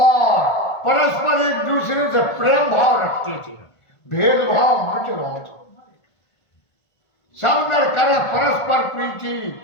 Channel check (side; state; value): right; late; 1.5 ms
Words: परस्पर एक दूसरे से प्रेम भाव रखते थे, भेदभाव मिट रहा था। सब नर करे परस्पर प्रीति